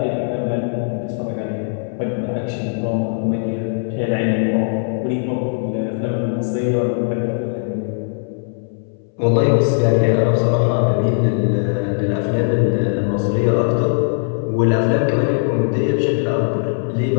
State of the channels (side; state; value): right; silent; 63 dB below the other